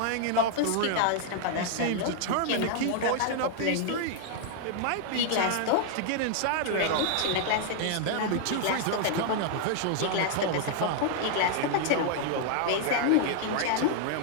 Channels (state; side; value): different; both; correlation 0.00